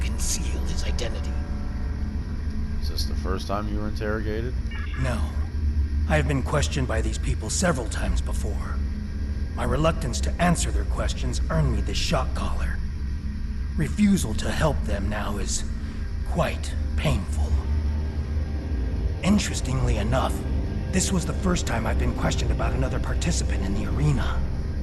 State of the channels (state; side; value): identical; both; correlation 1.00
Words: his identity. Is this the first time you were interrogated? No. I have been questioned by these people several times before. My reluctance to answer their questions earned me this shock collar. Refusal to help them now is quite painful. Interestingly enough, this was the first time I've been questioned about another participant in the arena.